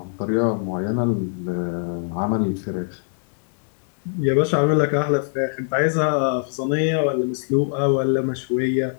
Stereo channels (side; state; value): right; silent; digital silence